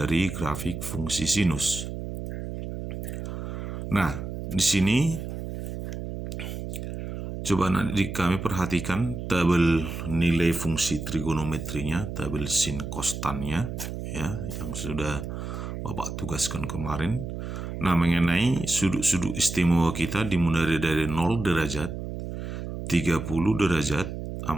grafik fungsi sinus. Nah, di sini coba nanti kami perhatikan tabel nilai fungsi trigonometrinya, tabel sin kostannya, ya, yang sudah Bapak tugaskan kemarin. Nah, mengenai sudut-sudut istimewa kita dimulai dari 0 derajat, 30 derajat,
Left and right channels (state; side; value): noise; right; hum, 6 dB below the sound